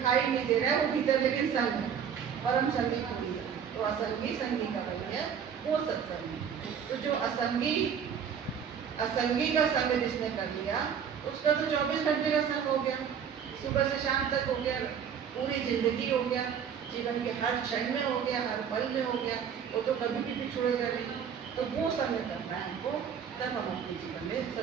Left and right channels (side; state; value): left; quieter; 7.7 dB